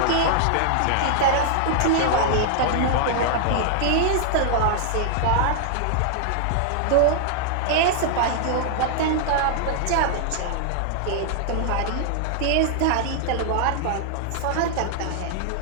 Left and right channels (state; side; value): different; both; correlation -0.01